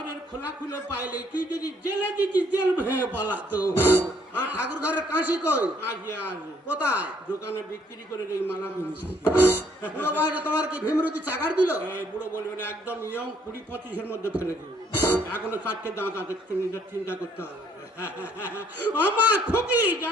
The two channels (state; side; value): normal; both; correlation 0.66